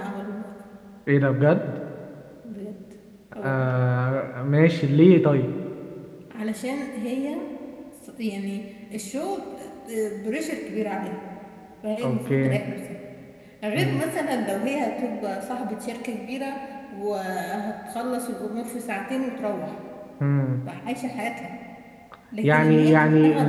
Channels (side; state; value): both; identical; correlation 1.00